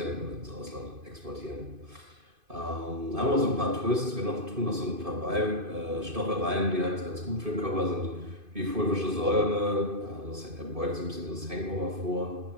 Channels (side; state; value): left; late; 2.5 ms